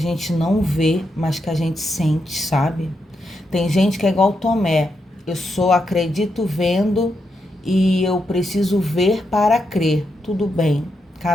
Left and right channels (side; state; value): both; normal; correlation 0.83